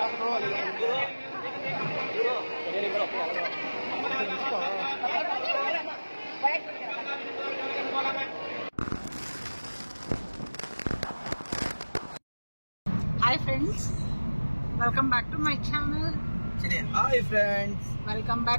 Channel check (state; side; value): inverted; both; correlation -1.00